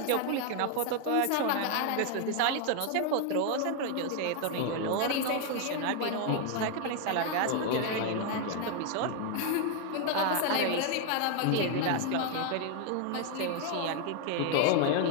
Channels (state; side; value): different; both; correlation 0.00